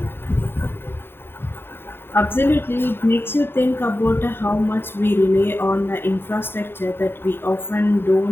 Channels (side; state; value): right; late; 0.11 ms